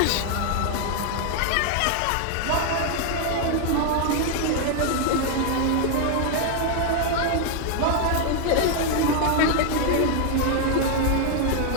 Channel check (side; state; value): both; different; correlation 0.00